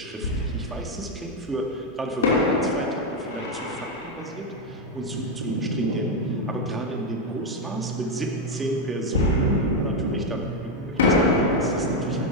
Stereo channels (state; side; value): normal; both; correlation 0.04